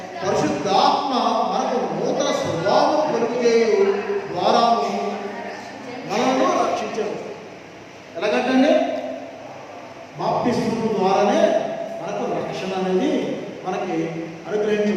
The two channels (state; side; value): identical; both; correlation 1.00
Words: పరిశుద్ధాత్మ మనకు నూతన స్వభావం కలుగజేయు ద్వారాను మనను రక్షించరు. ఎలాగంటే బాప్తిస్మము ద్వారానే మనకు రక్షణ అనేది మనకి